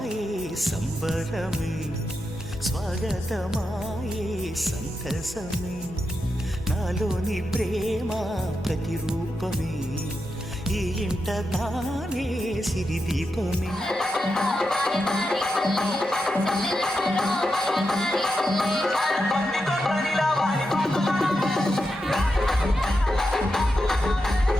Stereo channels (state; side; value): normal; both; correlation 0.87